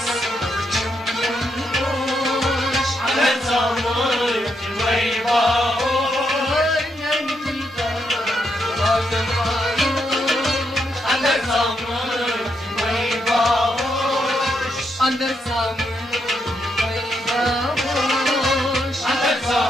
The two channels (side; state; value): both; normal; correlation 0.80